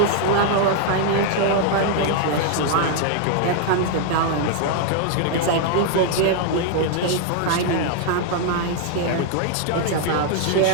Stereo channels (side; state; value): both; different; correlation 0.00